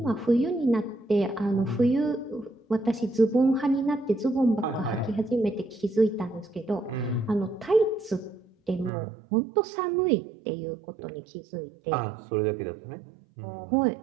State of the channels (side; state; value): left; drops out; at 8.9 s